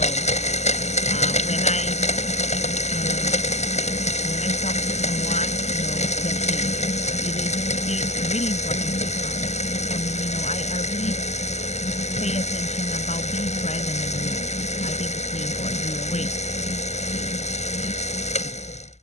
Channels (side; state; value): right; late; 0.33 ms